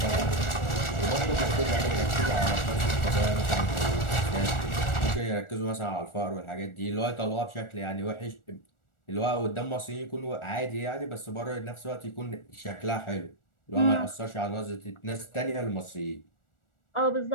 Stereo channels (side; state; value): right; late; 1.4 ms